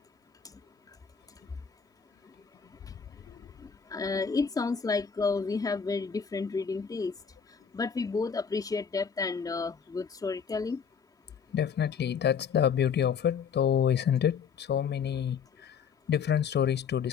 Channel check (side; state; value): right; quieter; 6.7 dB